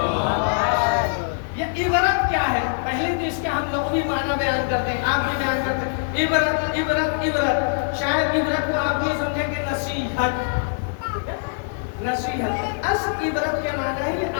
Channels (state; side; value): silent; right; digital silence